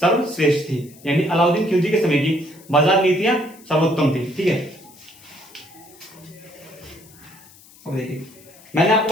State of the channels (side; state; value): left; noise; hiss, 24 dB below the sound